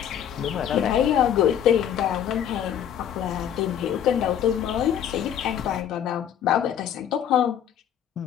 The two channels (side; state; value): right; quieter; 9.6 dB